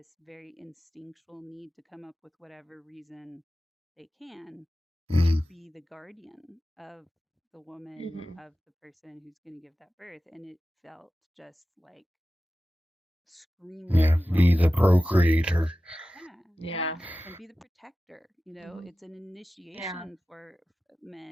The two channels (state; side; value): normal; both; correlation 0.95